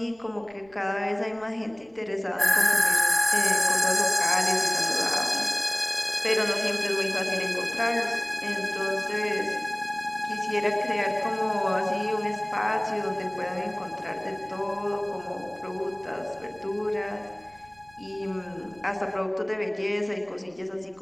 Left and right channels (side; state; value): right; noise; rumble, 29 dB below the sound